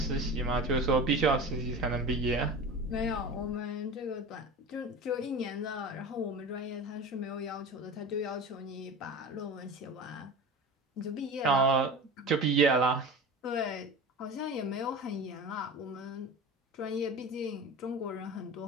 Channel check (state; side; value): normal; both; correlation 0.32